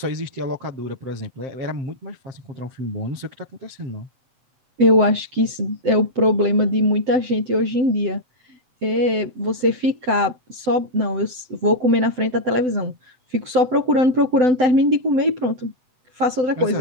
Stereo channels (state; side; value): late; left; 7.9 ms